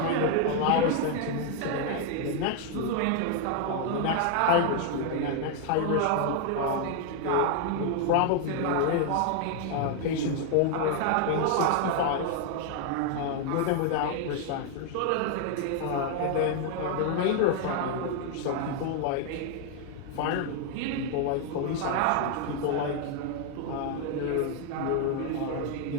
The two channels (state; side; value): different; both; correlation 0.00